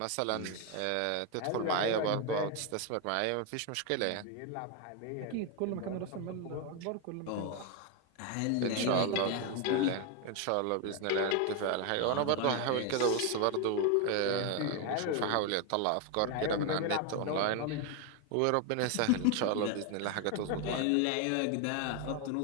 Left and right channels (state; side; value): different; both; correlation 0.01